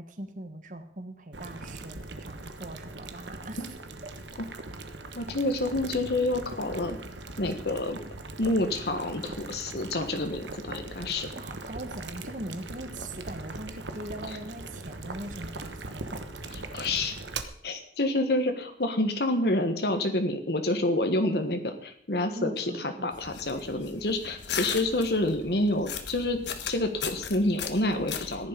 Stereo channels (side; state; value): both; normal; correlation 0.35